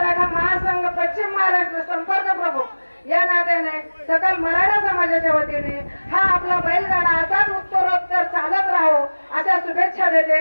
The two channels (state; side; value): inverted; both; correlation -1.00